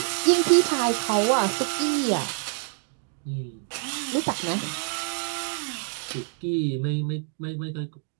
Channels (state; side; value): silent; left; 61 dB below the other